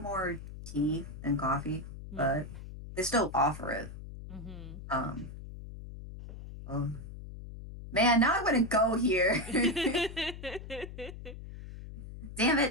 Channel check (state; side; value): noise; left; hum, 12 dB below the sound